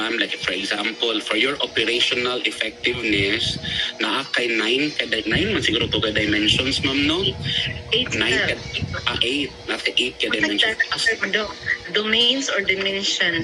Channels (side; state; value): both; identical; correlation 1.00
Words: Like, for example, for your operational effectiveness, naa kay 9 man siguro to ka dimensions, ma'am, no? 8 8. Nasa 8 ka dimensions. Domains or